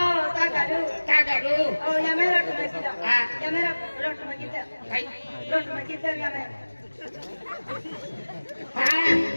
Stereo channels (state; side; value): inverted; both; correlation -1.00